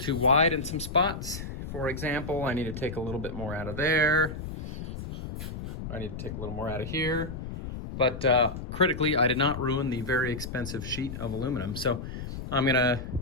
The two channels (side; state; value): left; noise; rumble, 8 dB below the sound